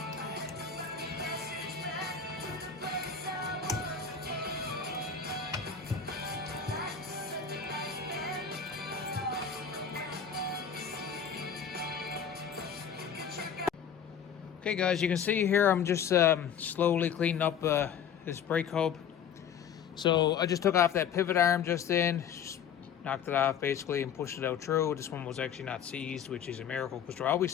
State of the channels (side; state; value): right; quieter; 7.6 dB